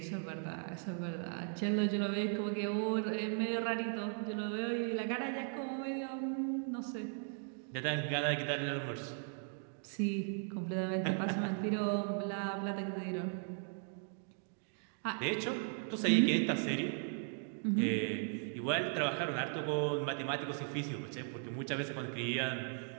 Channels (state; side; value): silent; left; 53 dB below the other